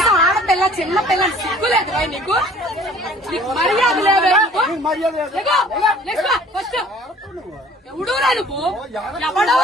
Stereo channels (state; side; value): normal; both; correlation 0.52